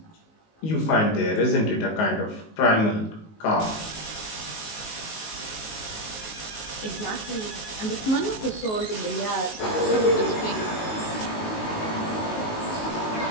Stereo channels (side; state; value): right; late; 19 ms